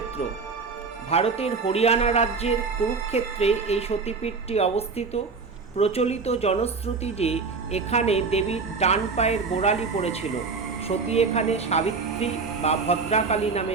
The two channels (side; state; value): left; quieter; 4.7 dB